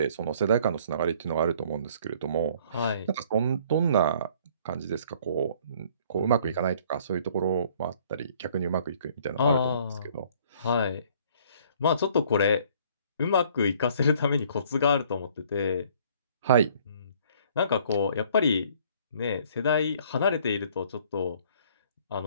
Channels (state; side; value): inverted; both; correlation -0.57